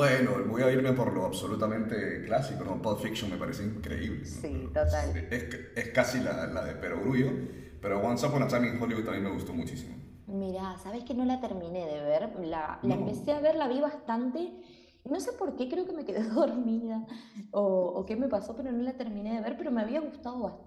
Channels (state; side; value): identical; both; correlation 1.00